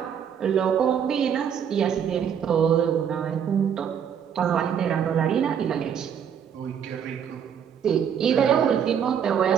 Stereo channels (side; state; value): left; quieter; 8.1 dB